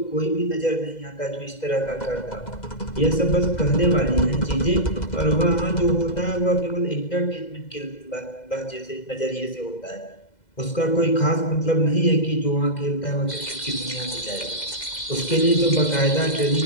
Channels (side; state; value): right; late; 2.0 ms